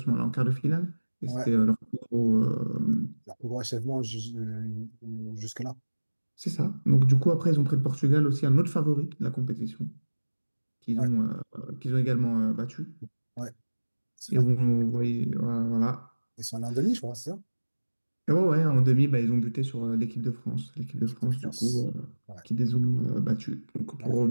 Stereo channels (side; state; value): both; inverted; correlation -1.00